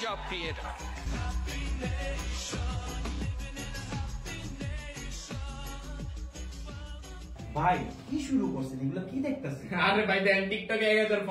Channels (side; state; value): both; identical; correlation 1.00